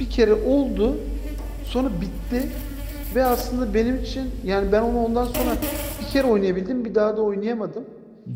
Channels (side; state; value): both; identical; correlation 1.00